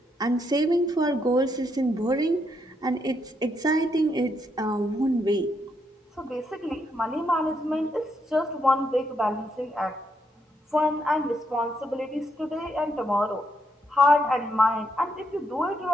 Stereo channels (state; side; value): normal; both; correlation 0.77